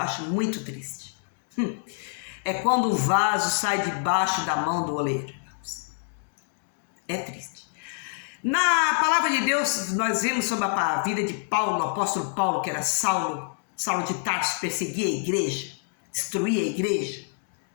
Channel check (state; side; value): silent; right; 61 dB below the other